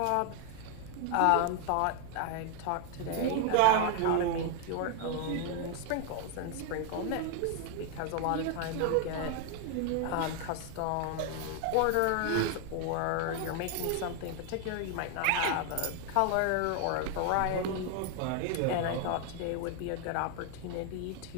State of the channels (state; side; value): different; both; correlation 0.01